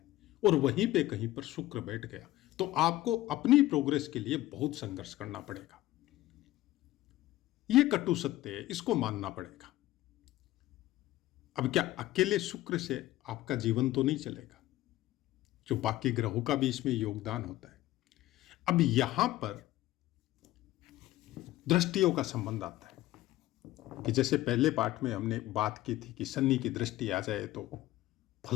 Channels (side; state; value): right; quieter; 16.1 dB